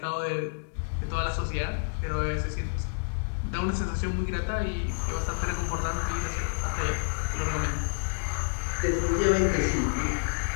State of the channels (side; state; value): right; silent; digital silence